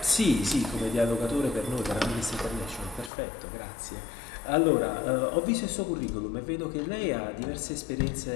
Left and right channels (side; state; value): right; drops out; at 3.1 s